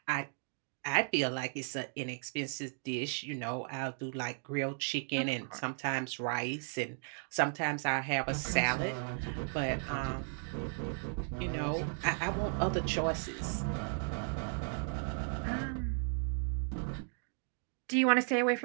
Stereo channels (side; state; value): left; silent; 54 dB below the other